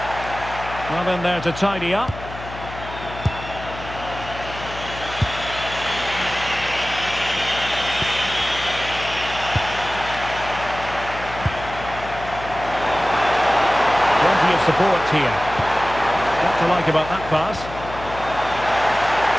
Well, in there to tidy up. Support here. What to like about that pass?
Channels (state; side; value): noise; left; hum, 12 dB below the sound